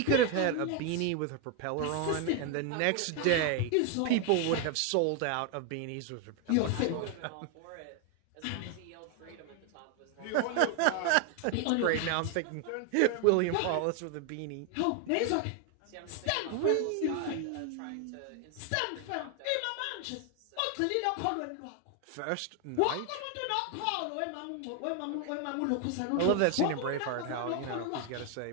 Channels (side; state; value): both; different; correlation 0.01